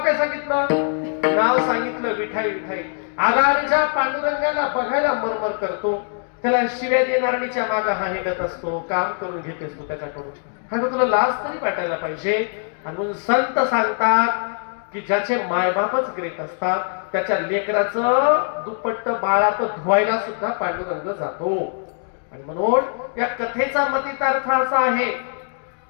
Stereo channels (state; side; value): silent; right; 64 dB below the other